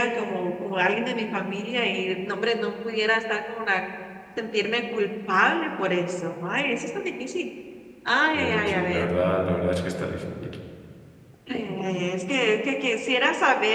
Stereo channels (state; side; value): identical; both; correlation 1.00